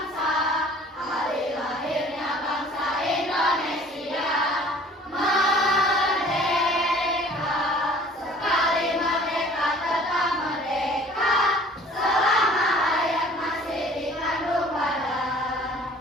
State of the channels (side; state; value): both; normal; correlation 0.51